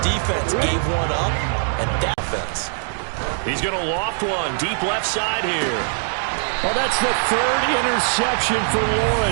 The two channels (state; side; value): silent; left; digital silence